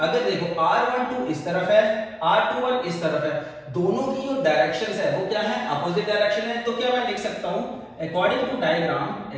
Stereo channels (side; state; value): both; identical; correlation 1.00